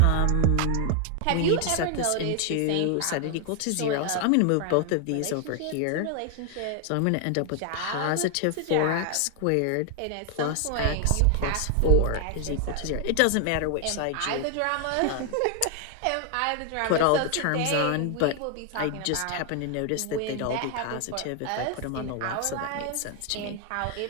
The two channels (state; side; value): different; both; correlation 0.00